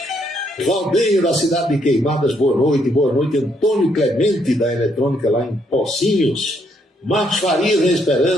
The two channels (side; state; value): both; normal; correlation 0.72